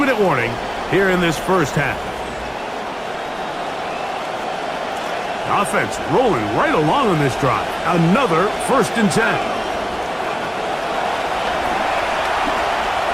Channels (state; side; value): identical; both; correlation 1.00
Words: warning here in this first half. Offense rolling right along on this drive. Another first and 10.